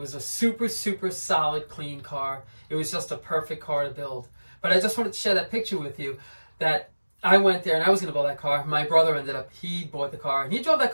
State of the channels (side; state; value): both; inverted; correlation -1.00